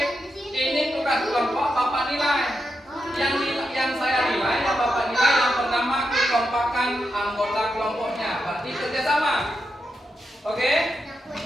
ini tugas kelompok papan nilai. Yang saya nilai ya papan nilai yang pertama kekompakan anggota kelompoknya, berarti kerjasama. Oke?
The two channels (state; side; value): normal; both; correlation 0.86